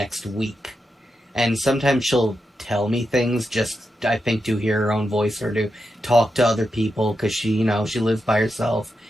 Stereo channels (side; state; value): both; normal; correlation 0.87